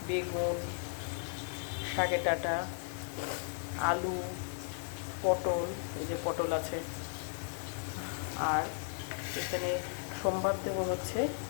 বেগুন, শাকের ডাঁটা, আলু, পটল, এই যে পটল আছে, আর এখানে সোমবার দেবো হচ্ছে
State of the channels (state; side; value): silent; right; digital silence